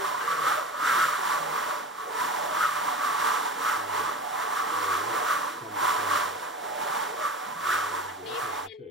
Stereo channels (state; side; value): normal; both; correlation 0.31